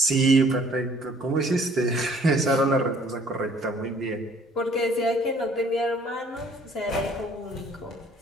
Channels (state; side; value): normal; both; correlation 0.58